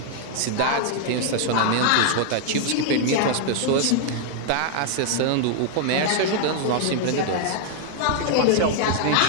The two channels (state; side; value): different; both; correlation 0.00